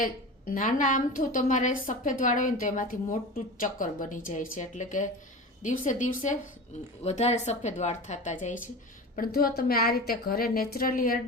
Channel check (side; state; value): both; normal; correlation 0.31